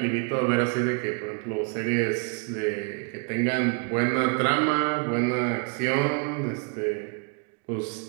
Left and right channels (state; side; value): quieter; left; 37.0 dB